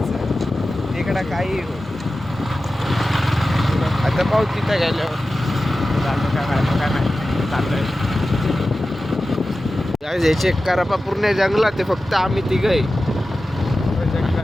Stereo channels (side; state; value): both; normal; correlation 0.94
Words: इकडं काही हो. आता पाहू तिथं गेल्यावर चाललोय. हे चेक करा पा पूर्ण जंगलात आहे. फक्त आम्ही तिघं